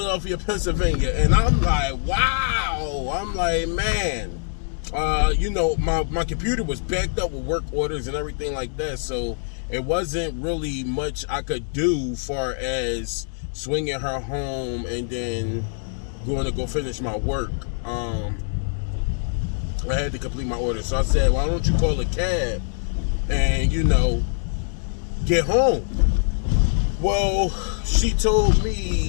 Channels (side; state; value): right; silent; 63 dB below the other